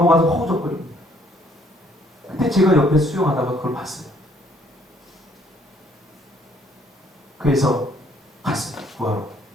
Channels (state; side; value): normal; both; correlation 0.64